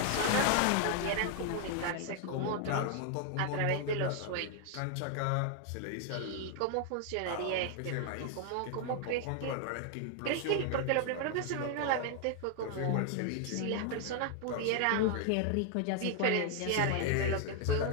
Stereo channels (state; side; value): different; both; correlation 0.00